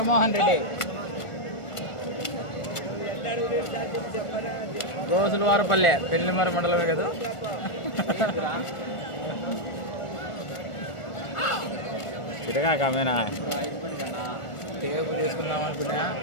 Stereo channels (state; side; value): late; right; 1.4 ms